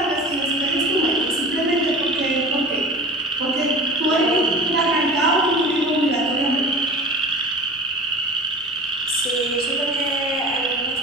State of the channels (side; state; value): both; normal; correlation 0.37